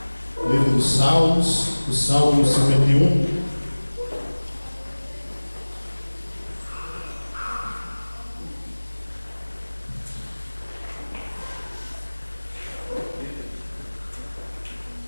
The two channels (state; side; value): inverted; both; correlation -1.00